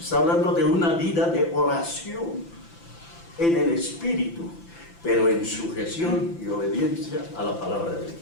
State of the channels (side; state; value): right; late; 5.9 ms